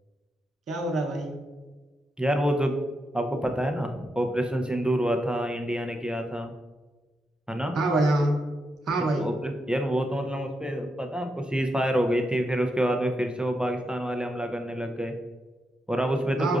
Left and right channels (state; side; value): normal; both; correlation 0.84